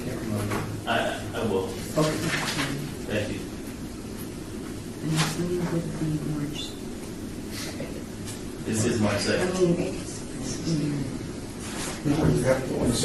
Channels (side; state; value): both; identical; correlation 1.00